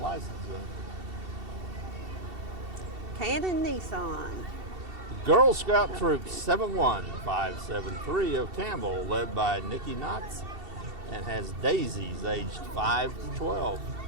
license. Cannon Nissan. The Girl Scout Troop 71573 of Campbell, led by Nikki Knotts, and has daisies aged 5 to 12.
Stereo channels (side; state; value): left; late; 2.7 ms